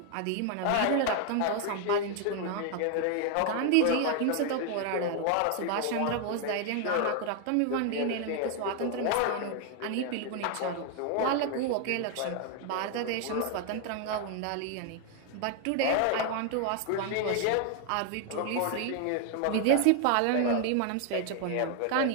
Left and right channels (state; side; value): different; both; correlation 0.00